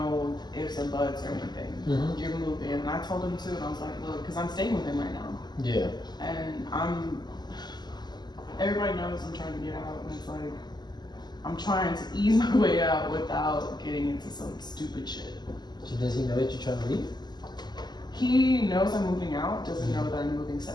ifs and buts or anything. Mhm. You're moving. And I told him too, and I was like, look, because I'm staying with him right now. Yeah. And everybody knows I'm trying to get out, and it's like, I'm trying to ease my way out without getting into some stupid shit. So does he know that you're trying to leave? He knows I'm moving out, doesn't know that I'm moving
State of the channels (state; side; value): late; right; 0.21 ms